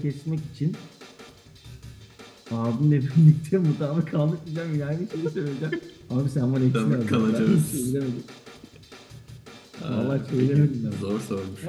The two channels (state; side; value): identical; both; correlation 1.00